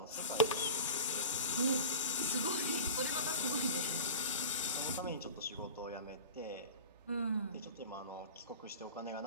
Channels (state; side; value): inverted; both; correlation -0.36